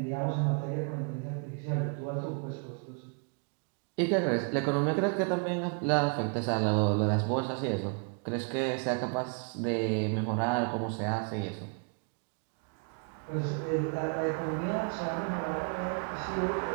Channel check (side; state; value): left; quieter; 38.4 dB